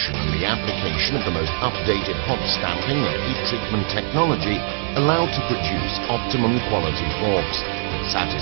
and the application of the most updated hot stamping and heat treatment technology allow to produce optimum quality forks that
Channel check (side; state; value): left; silent; 61 dB below the other